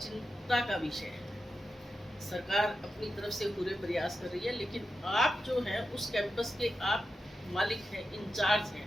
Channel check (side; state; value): both; normal; correlation 0.90